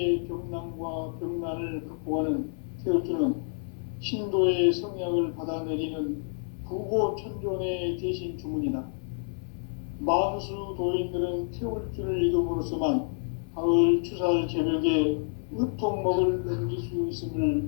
병난과 병난을 극복하는 태울주는 신도의 성향을 받아내리는 구고천존의 대신 주문이다. 만수 도인들은 태울주를 읽음으로써만 가을 추살 개벽에 의통목을 넘길 수 있음을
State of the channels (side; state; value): right; silent; 59 dB below the other